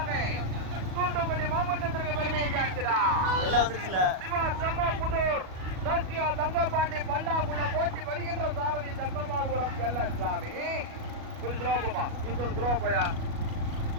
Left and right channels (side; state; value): left; late; 37 ms